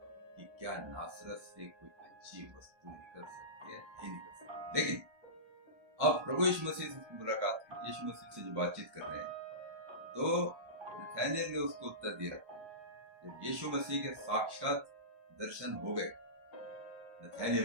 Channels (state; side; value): late; left; 1.3 ms